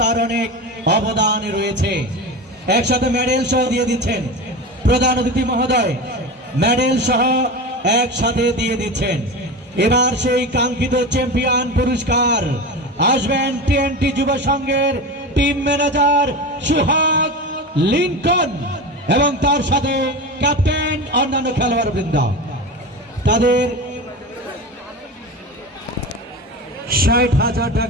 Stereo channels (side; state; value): both; normal; correlation 0.26